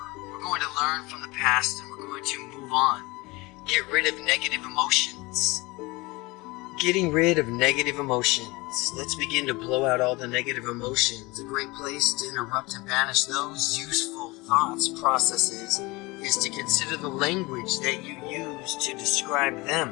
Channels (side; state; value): right; quieter; 23.4 dB